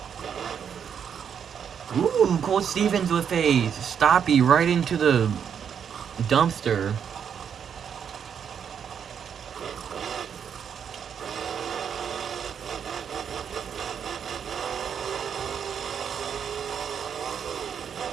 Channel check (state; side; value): quieter; left; 7.8 dB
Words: Ooh, Colt Stevens with a stoppie right into the dumpster.